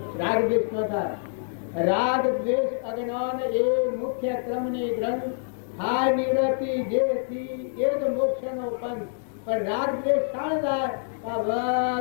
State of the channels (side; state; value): right; silent; digital silence